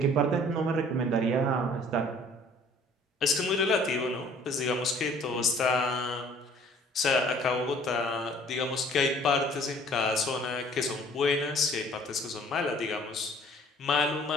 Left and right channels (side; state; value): both; normal; correlation 0.54